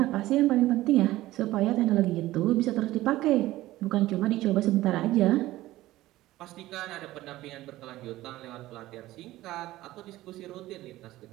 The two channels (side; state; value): left; quieter; 16.5 dB